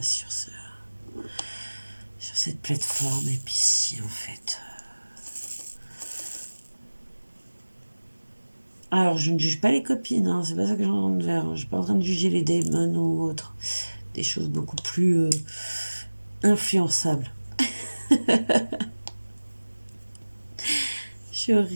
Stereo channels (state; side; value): inverted; both; correlation -1.00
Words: sur cette plateforme. Et puis si, en fait... Alors, je ne juge pas les copines, hein, c'est pas ça que j'en ai de faire. Je suis pas en train de juger les démons ou autres. Des choses beaucoup plus influençables. Je suis